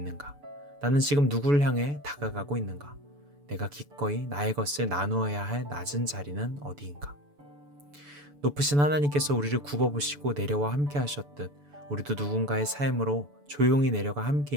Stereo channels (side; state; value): left; late; 6.9 ms